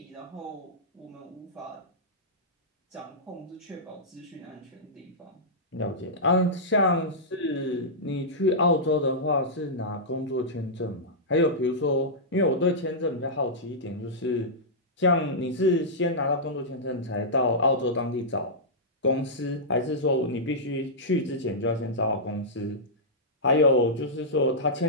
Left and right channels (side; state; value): both; normal; correlation -0.12